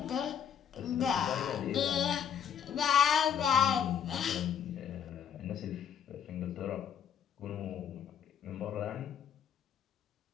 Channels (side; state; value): right; quieter; 8.3 dB